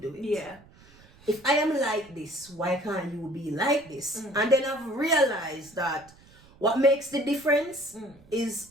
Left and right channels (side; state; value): right; noise; rumble, 26 dB below the sound